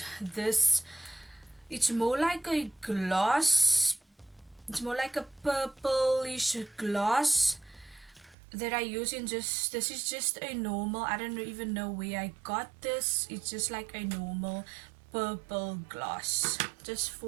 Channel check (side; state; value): left; drops out; at 8.3 s